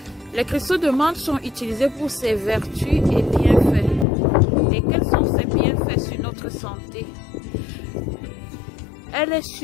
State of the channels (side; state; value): right; drops out; at 4.0 s